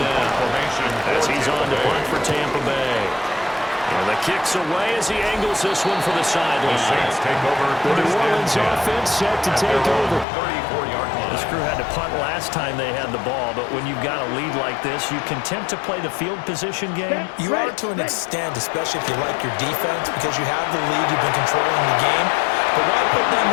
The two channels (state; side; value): drops out; right; at 10.2 s